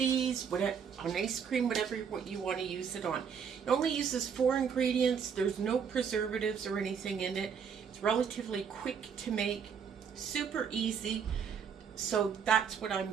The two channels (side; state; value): left; quieter; 7.1 dB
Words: whatever, on ice cream, whatever what you want to use it on. It only uses 4 ingredients. There's no preservatives or anything in it. It's relatively quick to make, super easy. So that's what I'm